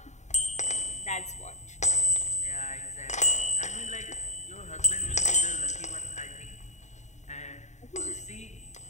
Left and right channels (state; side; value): late; right; 0.34 ms